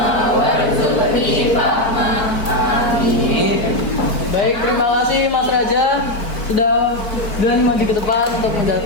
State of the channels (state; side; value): late; right; 4.4 ms